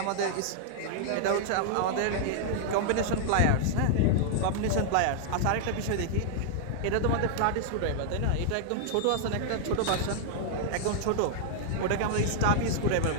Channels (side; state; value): both; different; correlation -0.01